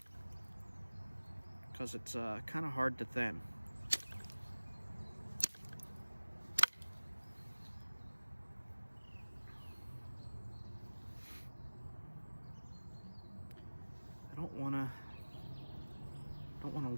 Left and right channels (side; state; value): both; inverted; correlation -1.00